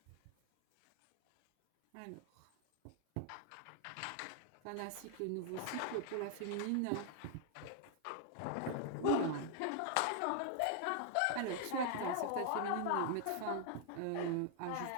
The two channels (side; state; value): both; different; correlation 0.00